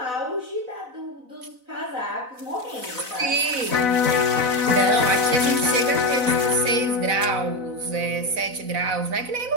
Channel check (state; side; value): late; left; 4.0 ms